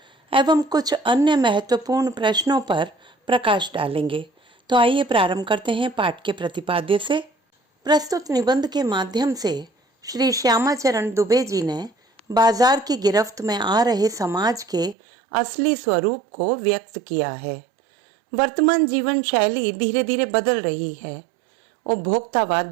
एवं कुछ अन्य महत्वपूर्ण प्रश्नों पर प्रकाश डालेंगे। तो आइए प्रारंभ करते हैं पाठ के प्रतिपाद्य से। प्रस्तुत निबंध के माध्यम से श्री श्यामाचरण दुबे जी ने बाजार की गिरफ्त में आ रहे समाज के असली स्वरूप को व्यक्त किया है। वर्तमान जीवन शैली धीरे धीरे बदल रही है। उपभोक्तावाद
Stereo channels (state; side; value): drops out; left; at 15.0 s